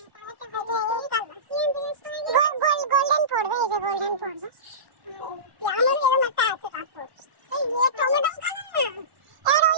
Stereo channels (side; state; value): left; late; 1.1 ms